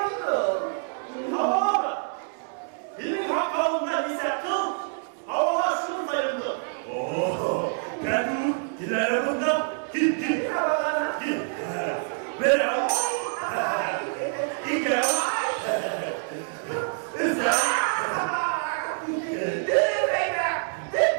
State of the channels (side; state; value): left; silent; 61 dB below the other